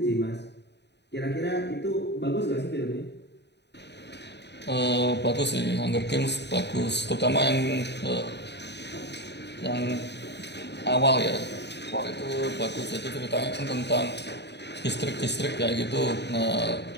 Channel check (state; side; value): late; right; 0.50 ms